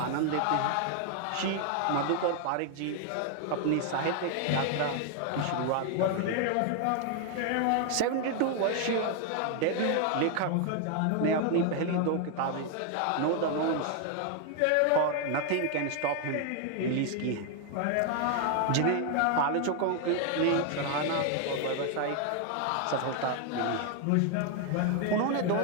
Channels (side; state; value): both; different; correlation 0.00